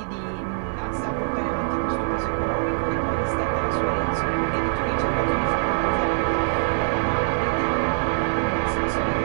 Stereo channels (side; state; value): left; silent; digital silence